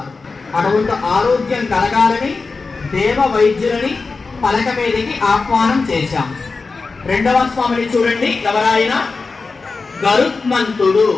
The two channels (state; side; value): quieter; right; 4.2 dB